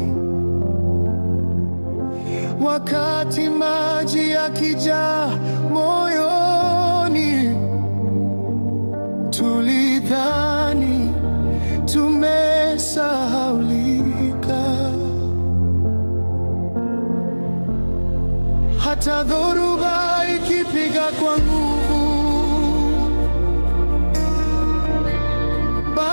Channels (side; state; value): both; inverted; correlation -1.00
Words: Wakati maji yakijaa moyoni, tulidhani tumesahaulika. Hata dhoruba ikipiga kwa nguvu,